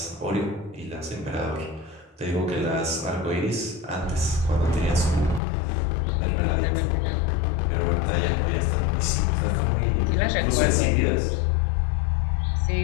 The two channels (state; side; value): drops out; right; at 5.4 s